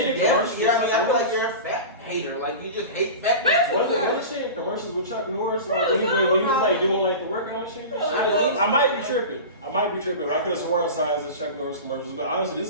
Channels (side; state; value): both; inverted; correlation -0.30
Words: you're in definitely- commercials? yeah, I with mean, I Chuck feel like Norris? you're a fat hater. Like, you just hate fat people. Wasn't she in commercials with Chuck Norris? Like, when he was like doing like the workout shit? Yeah. I might be tripping. I could have sworn I saw it as Chuck Norris commercials, but honestly, this